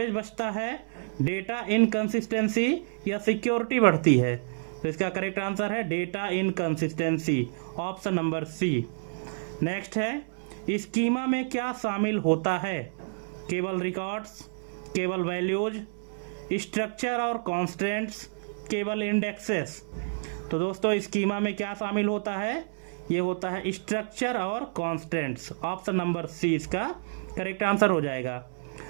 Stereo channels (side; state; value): left; silent; digital silence